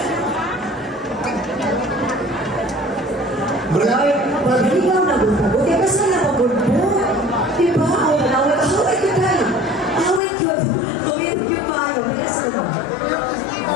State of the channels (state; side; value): drops out; right; at 10.2 s